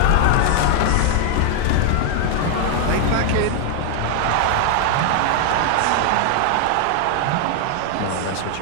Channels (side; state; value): both; different; correlation 0.00